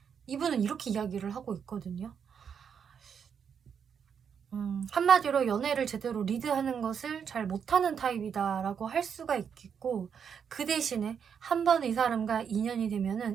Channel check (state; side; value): quieter; left; 7.3 dB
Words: 이분은 이렇게 이야기를 하고 있거든요. 한마디로 연애를 제대로 리드하는 것을 잘 못하는 타입이다라고 할 수가 있겠고, 그 대신에 한 번 이 사람과 인연이